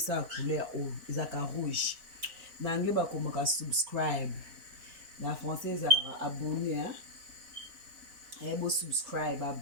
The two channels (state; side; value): late; left; 4.4 ms